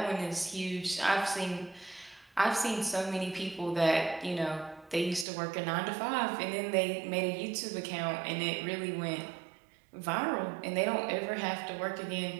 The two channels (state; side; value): drops out; left; at 5.2 s